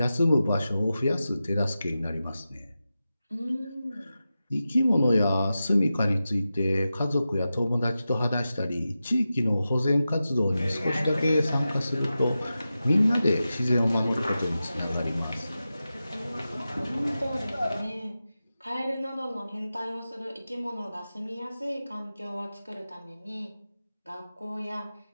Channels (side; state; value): both; inverted; correlation -0.93